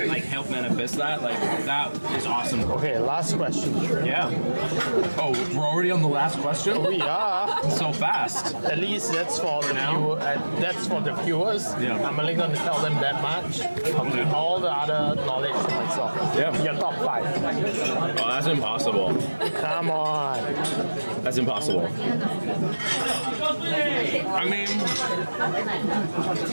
like, help manifest that, like, that is awesome. Okay, last question. Yeah. Oh, we're already on the last question? We are. So fast. At least that's for the viewers. I'm only going to tell them that much. All the other knowledge to myself. Your top 5. Oh, that's impossible. Come on. That's impossible. I mean,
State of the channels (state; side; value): inverted; both; correlation -1.00